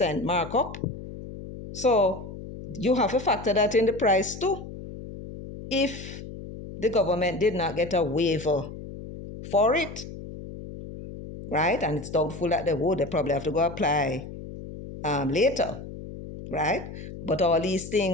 markup. So you have to factor that in the price too. If the government did not get a waiver for it, right? And it's doubtful that they would. They probably have to go apply later, right? But all these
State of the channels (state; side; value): noise; left; hum, 12 dB below the sound